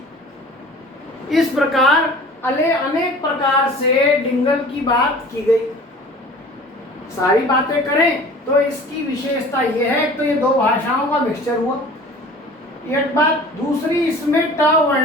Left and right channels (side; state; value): both; normal; correlation 0.44